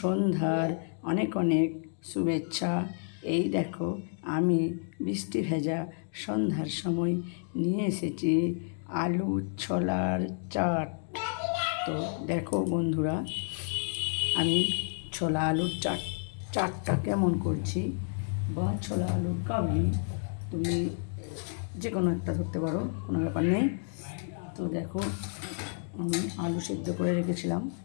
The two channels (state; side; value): silent; right; 57 dB below the other